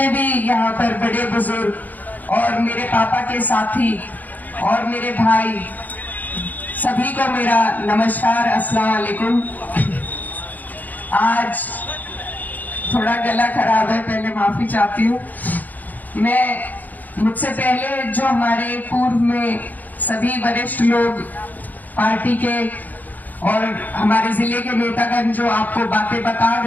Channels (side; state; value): right; late; 0.082 ms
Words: भी यहाँ पर बड़े बुजुर्ग और मेरे पापा के साथी और मेरे भाई, सभी को मेरा नमस्कार, अस्सलाम वालेकुम। आज थोड़ा गला खराब है, पहले माफी चाहती हूँ। मुझसे पहले जो हमारे पूर्व में सभी वरिष्ठ लोग पार्टी के और हमारे जिले के नेतागण जो आपको बातें बता